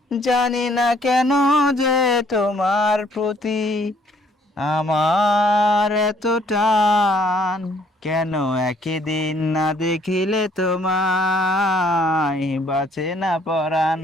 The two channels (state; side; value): normal; both; correlation 0.63